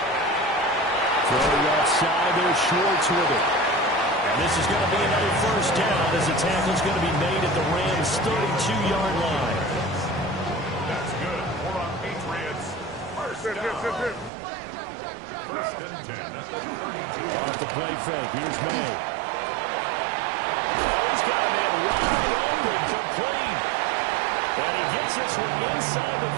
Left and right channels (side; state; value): left; drops out; at 14.3 s